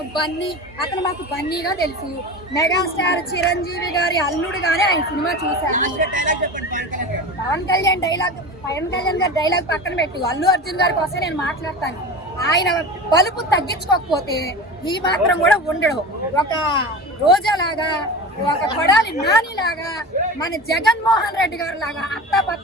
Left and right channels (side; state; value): both; normal; correlation 0.30